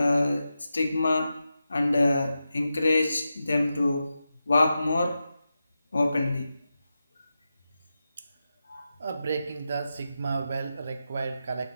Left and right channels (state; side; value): inverted; both; correlation -0.90